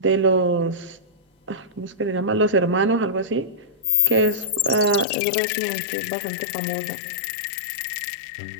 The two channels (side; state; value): right; drops out; at 5.1 s